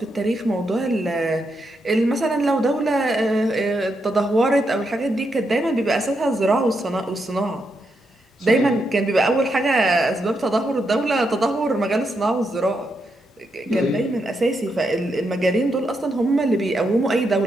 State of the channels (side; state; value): both; normal; correlation 0.82